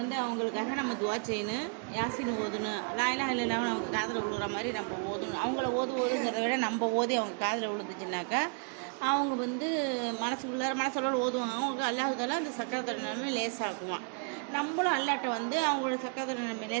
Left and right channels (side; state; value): left; quieter; 38.4 dB